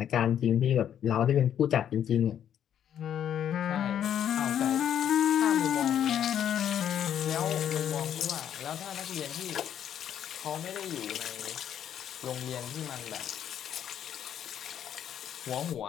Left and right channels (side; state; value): right; quieter; 9.7 dB